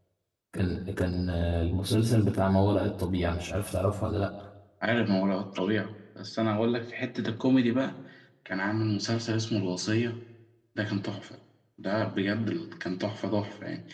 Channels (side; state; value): both; identical; correlation 1.00